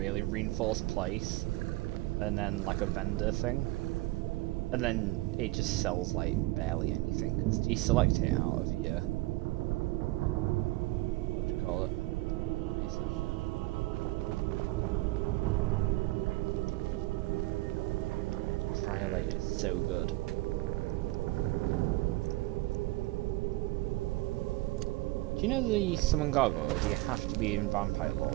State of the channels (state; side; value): quieter; left; 20.4 dB